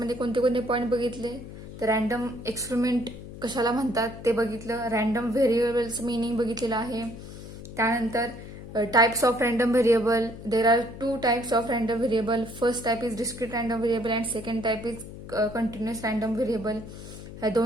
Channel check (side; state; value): left; noise; hum, 13 dB below the sound